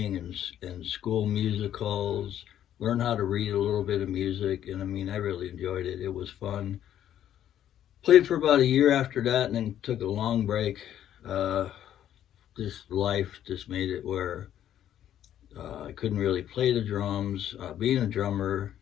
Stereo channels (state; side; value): quieter; right; 11.0 dB